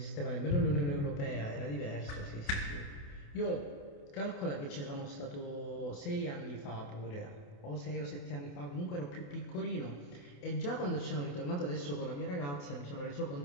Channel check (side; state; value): right; late; 28 ms